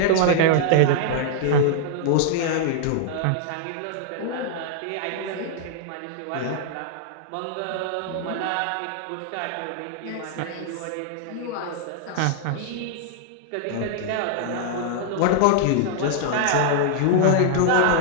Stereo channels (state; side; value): different; both; correlation -0.01